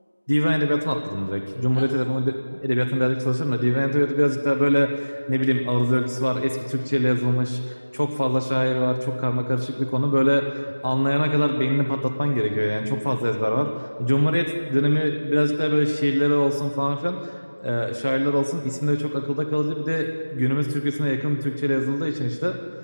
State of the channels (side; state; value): both; inverted; correlation -1.00